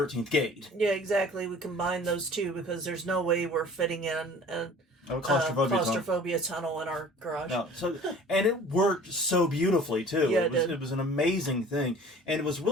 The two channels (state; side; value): normal; both; correlation 0.47